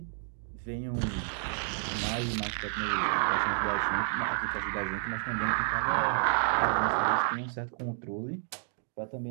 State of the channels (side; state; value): left; silent; digital silence